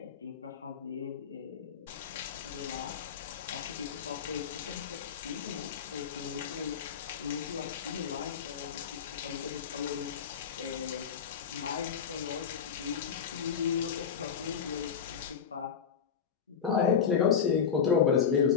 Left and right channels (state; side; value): quieter; right; 7.2 dB